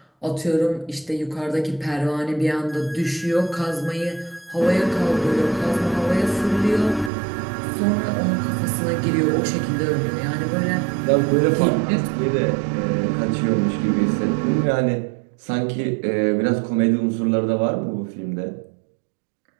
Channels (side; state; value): left; drops out; at 7.1 s